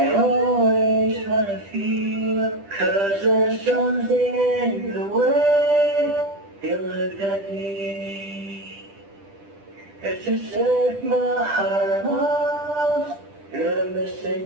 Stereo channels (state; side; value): late; left; 10 ms